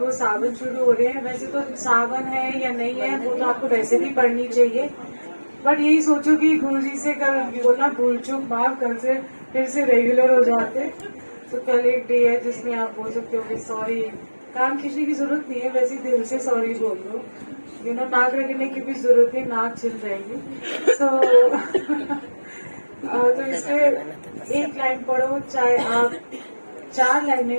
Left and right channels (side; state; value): both; inverted; correlation -1.00